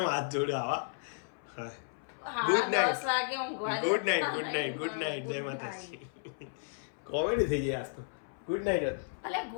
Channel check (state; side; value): silent; right; 55 dB below the other